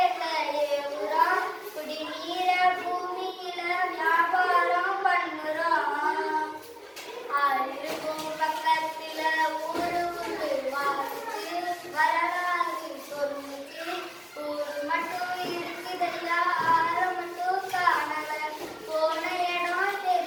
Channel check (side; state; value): both; identical; correlation 1.00